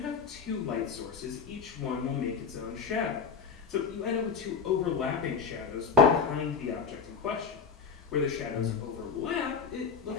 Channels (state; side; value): quieter; right; 5.8 dB